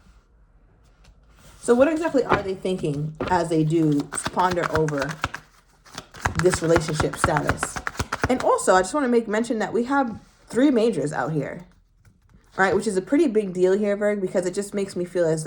So what exactly are they thinking as they do ponder over this relationship status? And also, I just want to make mention that we have 3 majors out here. Right, which is a pretty big deal here, Virgo, because it just makes me feel as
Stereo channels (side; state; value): both; identical; correlation 1.00